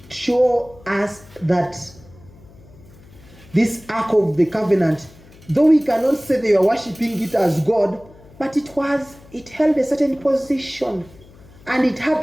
show us that this Ark of the Covenant, though we cannot say they were worshipping it as God, but it held a certain position, and it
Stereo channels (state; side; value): noise; left; hum, 23 dB below the sound